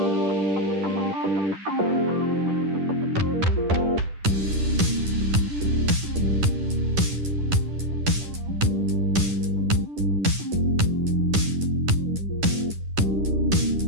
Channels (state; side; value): late; left; 10 ms